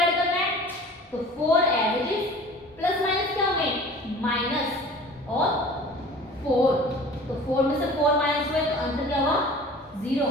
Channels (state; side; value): normal; both; correlation 0.44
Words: करना है, तो 4 as it is, plus minus क्या होंगे, माइनस और 4, तो 4 में से 4 माइनस हुए तो आंसर क्या हुआ, 0।